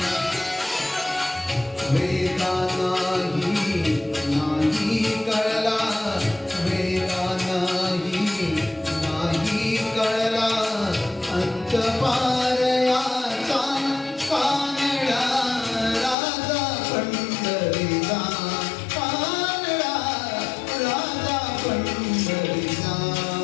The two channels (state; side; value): drops out; right; at 16.2 s